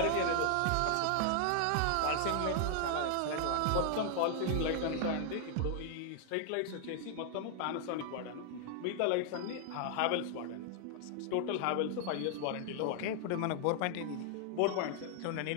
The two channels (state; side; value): different; both; correlation 0.00